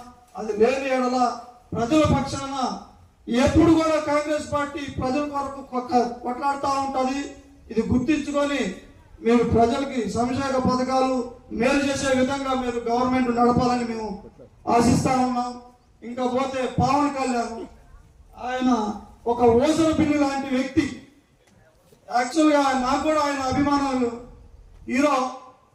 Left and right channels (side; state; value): both; identical; correlation 1.00